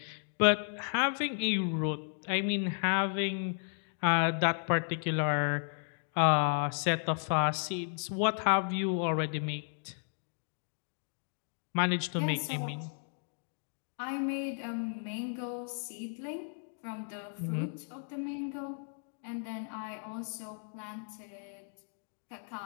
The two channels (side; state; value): right; silent; 55 dB below the other